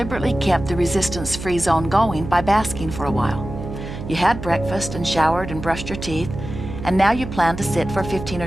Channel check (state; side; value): noise; right; hum, 9 dB below the sound